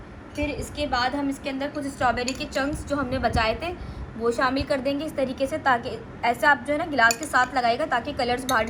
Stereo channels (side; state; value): both; identical; correlation 1.00